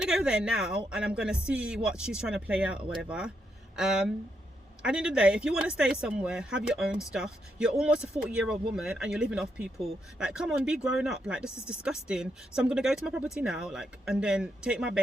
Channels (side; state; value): both; normal; correlation 0.80